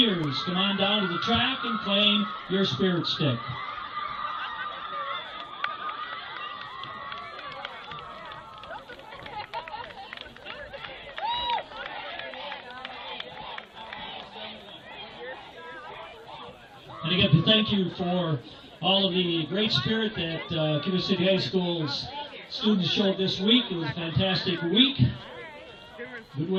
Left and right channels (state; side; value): identical; both; correlation 1.00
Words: Come on down to the track and claim your Spirit Stick. And again, thank you for all of the great spirit that Cuba City High School's students showed this week. It was a fantastic week. Good